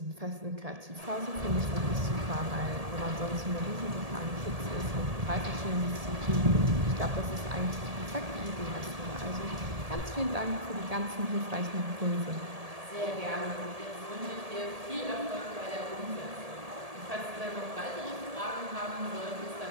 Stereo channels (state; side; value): late; left; 1.7 ms